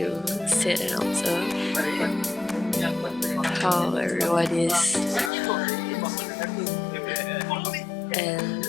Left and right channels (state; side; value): drops out; right; at 5.3 s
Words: sit and observe how everyone is, and